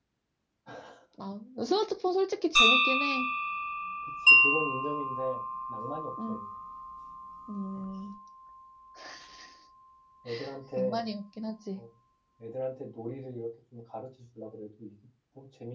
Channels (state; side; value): identical; both; correlation 1.00